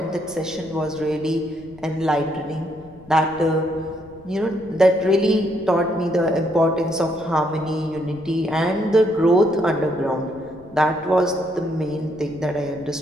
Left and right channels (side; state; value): left; noise; rumble, 23 dB below the sound